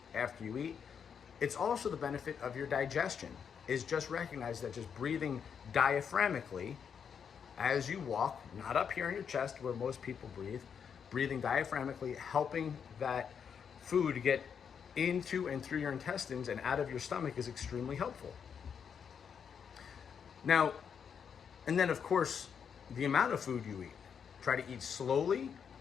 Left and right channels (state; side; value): quieter; right; 7.2 dB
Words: after you eat, it's also the benefit of your digestion. Is just recognize that just breathing diaphragmically as you walk, not up here in your chest where most people breathe, breathing diaphragmically, helping that food get into and through your intestines and out of your stomach is extremely helpful. Now, and then of course, the amount of food you eat. Try to eat slowly,